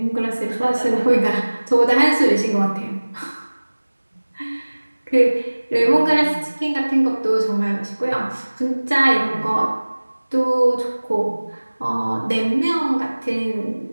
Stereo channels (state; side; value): inverted; both; correlation -1.00